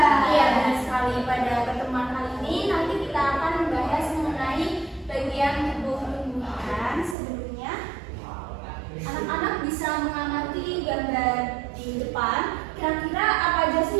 Iya, benar sekali. Pada pertemuan kali ini nanti kita akan membahas mengenai bagian tubuh tumbuhan. Sebelumnya, anak-anak bisa mengamati gambar di depan. Kira-kira apa aja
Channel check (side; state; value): left; drops out; at 7.2 s